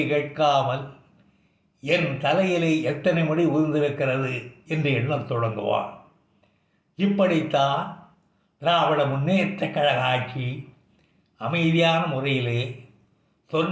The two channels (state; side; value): identical; both; correlation 1.00